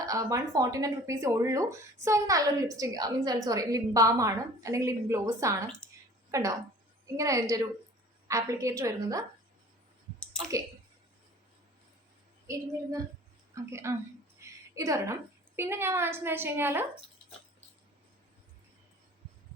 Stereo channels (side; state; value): both; normal; correlation 0.47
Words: 149 rupees ഉള്ളൂ. സോ ഇത് നല്ലൊരു ലിപ്സ്റ്റിക് ലിപ് ബാം ആണ്, അല്ലെങ്കിൽ ലിപ് ഗ്ലോസ് ആണ്. കണ്ടോ, ഇങ്ങനെ അതിൻ്റെ ഒരു ആപ്ലിക്കേറ്റർ വരുന്നത്. ഓക്കെ, ഓക്കെ, ഇതൊരെണ്ണം. പിന്നെ ഞാൻ വാങ്ങിച്ചെന്ന് വെച്ച് കഴിഞ്ഞാൽ